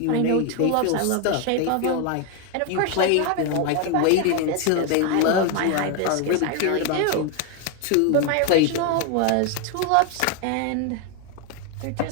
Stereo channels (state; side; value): different; both; correlation 0.01